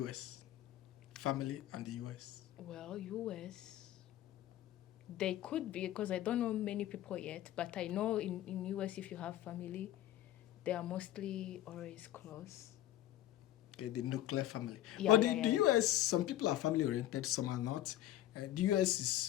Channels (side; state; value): right; quieter; 13.6 dB